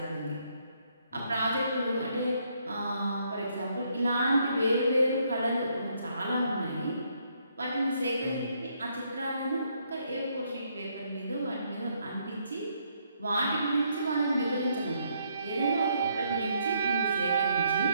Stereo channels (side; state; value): both; inverted; correlation -0.72